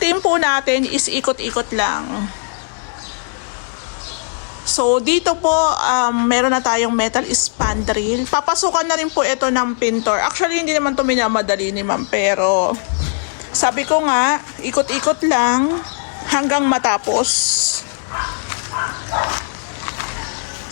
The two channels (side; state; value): right; silent; digital silence